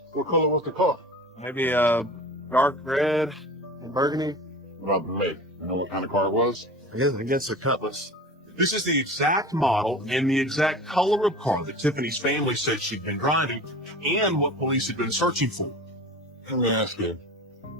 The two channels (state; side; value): normal; both; correlation 0.36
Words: What color was the car? Maybe dark red and burgundy. What about the make? You know what kind of car it was? I guess a Cutlass. This is the exact model and the exact color of car that Tiffany's family said she'd been driving and what police had been searching for. Let me ask you.